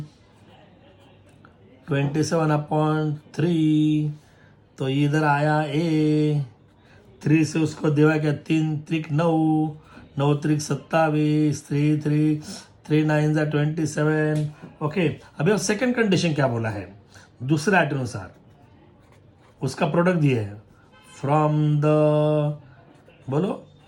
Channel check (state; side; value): identical; both; correlation 1.00